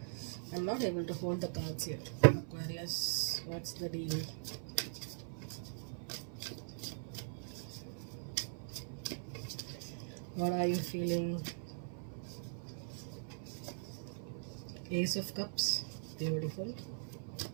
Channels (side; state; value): left; silent; 50 dB below the other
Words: I'm not able to hold the cards here. Aquarius, what's the deal? What are you feeling? Ace of Cups, beautiful.